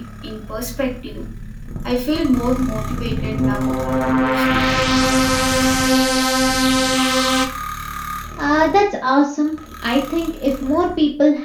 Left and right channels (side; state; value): both; identical; correlation 1.00